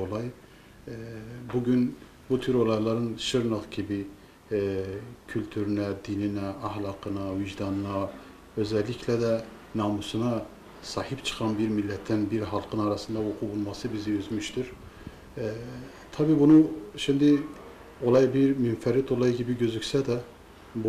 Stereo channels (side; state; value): both; identical; correlation 1.00